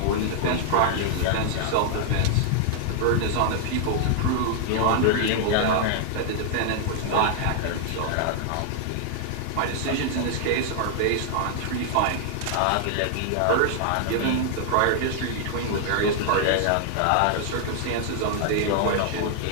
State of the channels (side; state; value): both; different; correlation 0.00